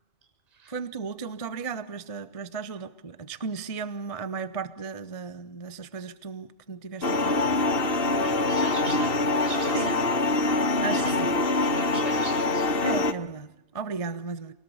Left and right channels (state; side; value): late; right; 2.6 ms